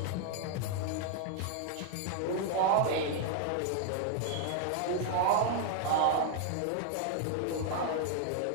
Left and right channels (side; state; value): both; different; correlation 0.00